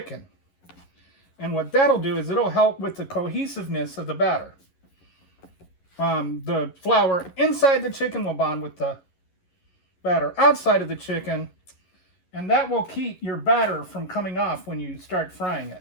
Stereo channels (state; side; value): late; right; 11 ms